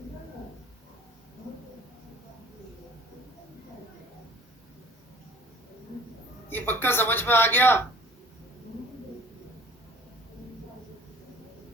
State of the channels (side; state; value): both; normal; correlation 0.50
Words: ये पक्का समझ में आ गया।